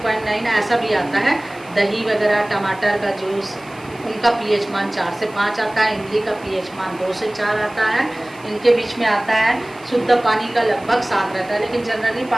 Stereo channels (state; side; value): noise; right; hiss, 24 dB below the sound